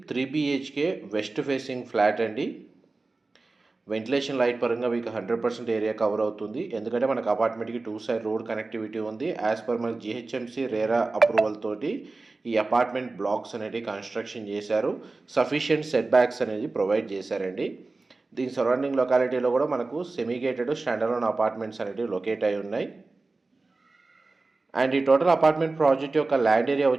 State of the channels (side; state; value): left; quieter; 3.5 dB